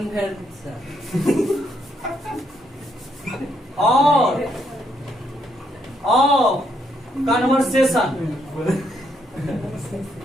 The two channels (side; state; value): both; normal; correlation 0.74